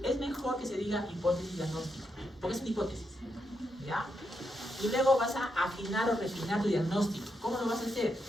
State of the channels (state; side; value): normal; both; correlation 0.82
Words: es mejor que se diga hipótesis diagnóstica, porque es una hipótesis, ¿ya? Y luego vas a afinar o refinar tu diagnóstico. ¿Cómo lo vas a hacer?